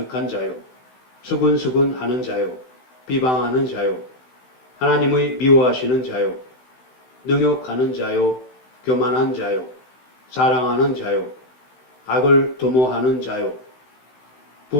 자요, 수근수근하는 자요, 비방하는 자요, 하나님의 미워하시는 자요, 능욕하는 자요, 교만한 자요, 사랑하는 자요, 악을 도모하는 자요,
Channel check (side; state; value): right; late; 16 ms